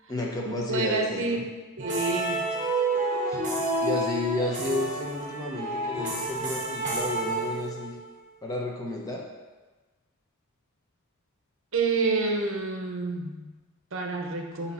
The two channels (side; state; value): both; normal; correlation 0.18